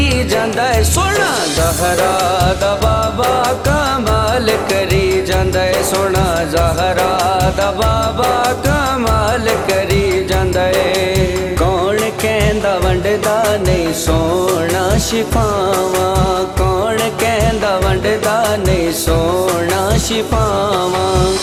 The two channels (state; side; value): identical; both; correlation 1.00